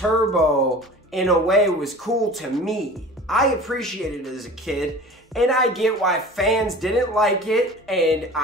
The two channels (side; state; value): both; normal; correlation 0.39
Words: in a way, was cool to me. I appreciated it as a kid, and I get why fans didn't like it, and